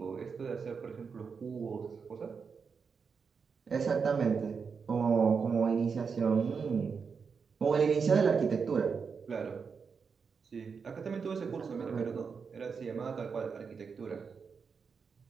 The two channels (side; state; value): left; quieter; 5.7 dB